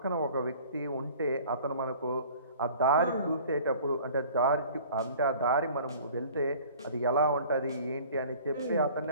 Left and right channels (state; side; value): inverted; both; correlation -0.48